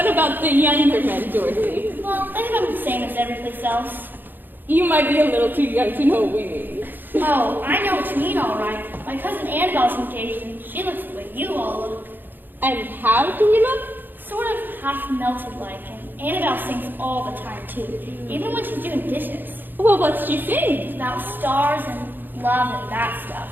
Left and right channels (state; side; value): late; left; 0.091 ms